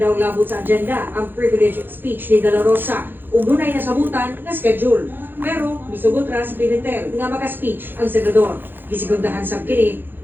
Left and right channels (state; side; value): late; left; 0.096 ms